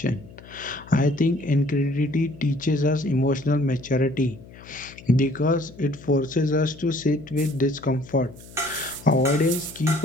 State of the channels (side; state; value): left; noise; hum, 20 dB below the sound